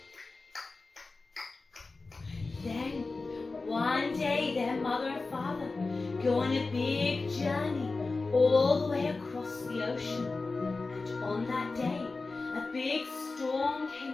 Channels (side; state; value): right; quieter; 3.7 dB